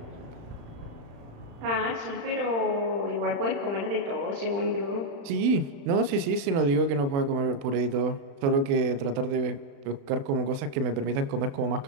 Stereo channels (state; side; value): late; left; 36 ms